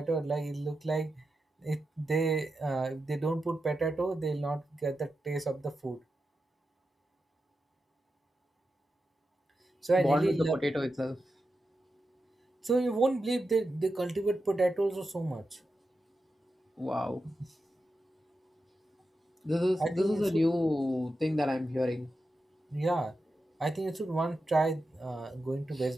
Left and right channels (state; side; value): normal; both; correlation 0.89